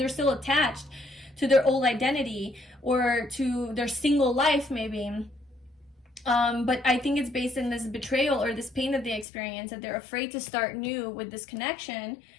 still attached to their old identity or to their single life, maybe. But I think it's based in this betrayal or this pain that they experience, that they're afraid to start new with this connection.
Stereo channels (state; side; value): drops out; right; at 9.2 s